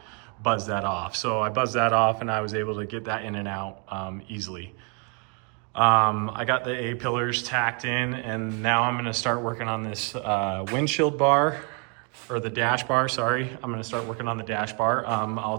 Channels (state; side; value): quieter; left; 36.6 dB